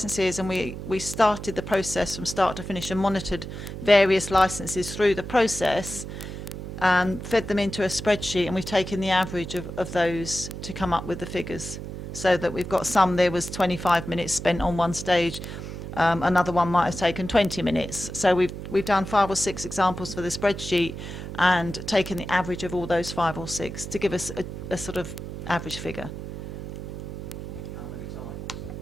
and we started the process from start to finish and monitored various licences through the process and fed them into a spreadsheet, and we've taken the average of those to come up with the figures, so that we've got some. There was 25 minutes spent on one stage, another one might have taken 20 minutes. So we've done 5 or 6 examples for the spreadsheet and taken the average of all those 5 or 6 to give us a sort of average figure.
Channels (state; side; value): noise; right; hum, 8 dB below the sound